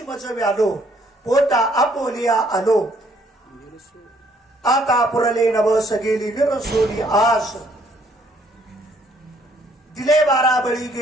आलो पोटा आपोलिया आलो, आता पुरले नवस गेली विरसोली आस, दिले 12 बळी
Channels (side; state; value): both; normal; correlation 0.65